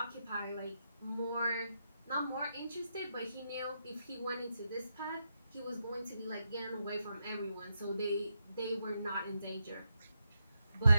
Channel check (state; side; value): inverted; both; correlation -0.84